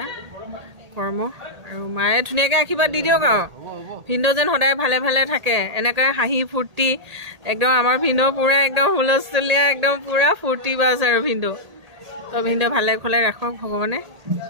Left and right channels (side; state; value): left; late; 1.8 ms